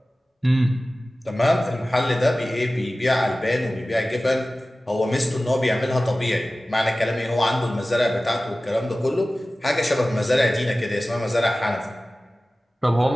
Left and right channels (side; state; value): both; normal; correlation 0.96